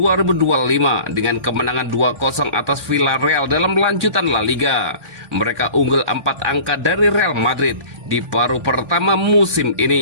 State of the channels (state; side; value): late; left; 1.2 ms